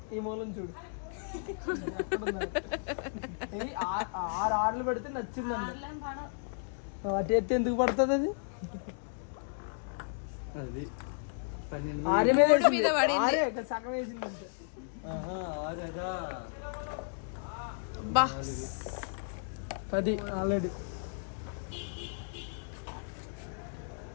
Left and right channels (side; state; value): right; silent; digital silence